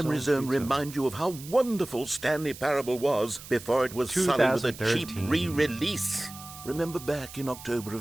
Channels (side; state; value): right; noise; hiss, 15 dB below the sound